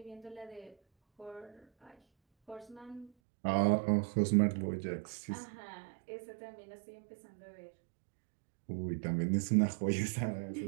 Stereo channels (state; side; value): drops out; left; at 3.1 s